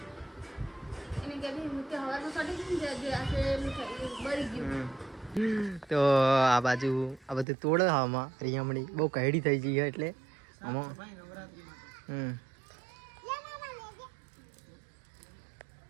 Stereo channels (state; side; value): drops out; left; at 7.5 s